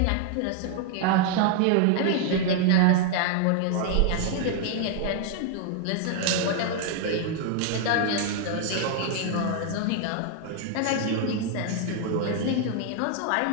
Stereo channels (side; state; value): both; different; correlation 0.00